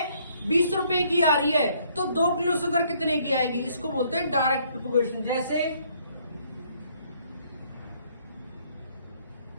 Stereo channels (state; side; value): inverted; both; correlation -0.65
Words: 20 रुपए की आ रही है, तो 2 किलो शुगर कितने की आएगी, इसको बोलते हैं डायरेक्ट प्रोपोगेशन। जैसे